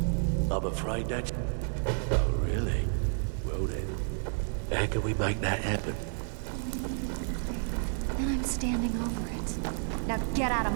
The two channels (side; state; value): left; silent; 57 dB below the other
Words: I'm afraid that's... Oh, really? Well then, how can we make that happen? When you're in your grave, then I'm standing over it. Now get out of